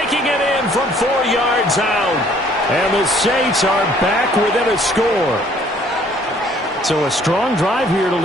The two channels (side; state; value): both; normal; correlation 0.60